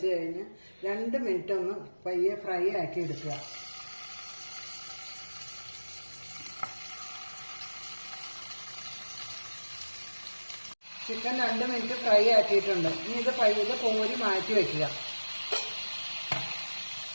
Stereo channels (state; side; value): inverted; both; correlation -1.00